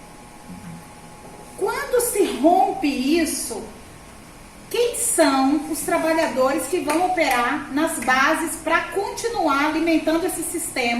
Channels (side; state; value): both; identical; correlation 1.00